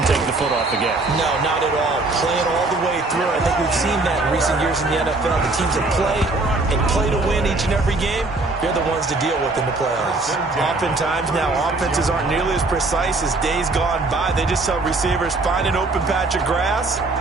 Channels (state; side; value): quieter; left; 3.2 dB